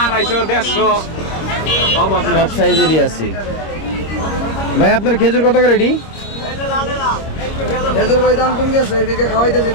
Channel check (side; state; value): right; late; 26 ms